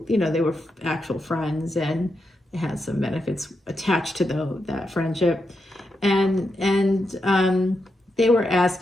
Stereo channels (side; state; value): both; normal; correlation 0.85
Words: you know, they were actual friends and they had some benefits attached to that friendship. And they were